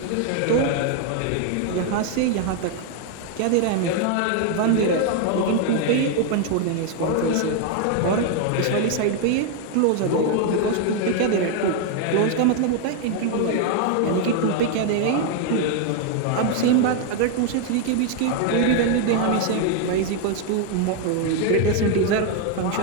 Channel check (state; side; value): different; both; correlation 0.01